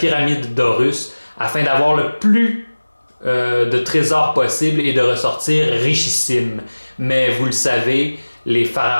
d'Horus afin d'avoir le plus de trésors possible et de ressortir richissime. Mais vous le savez, les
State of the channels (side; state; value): both; inverted; correlation -1.00